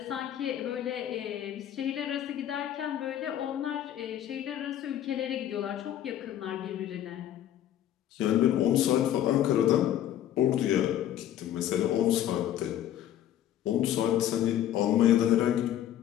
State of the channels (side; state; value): right; quieter; 11.4 dB